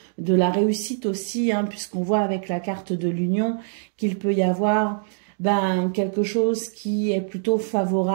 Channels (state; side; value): silent; left; digital silence